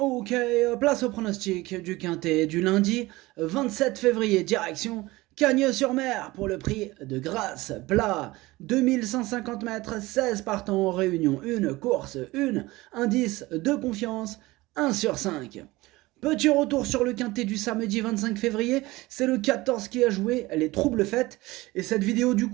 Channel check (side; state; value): left; quieter; 20.1 dB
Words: place au pronostic du quintet du lundi 27 février, direction Cagnes-sur-Mer pour le prix de Grasse plat. 2150 mètres, 16 partants en réunion, une course, une indice de confiance, 1 sur 5. Petit retour sur le quintet du samedi 25 février, c'est le 14 qui a joué, les troubles fêtes, et cette vidéo du